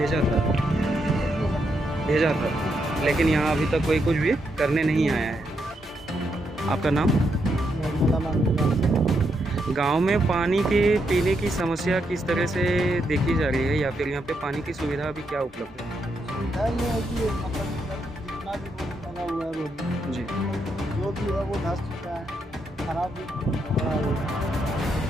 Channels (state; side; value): normal; both; correlation 0.80